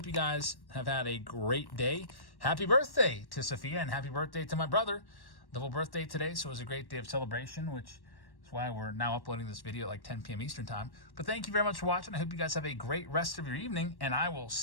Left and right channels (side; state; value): right; late; 1.1 ms